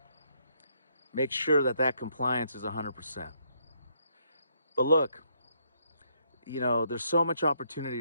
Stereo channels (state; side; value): inverted; both; correlation -0.73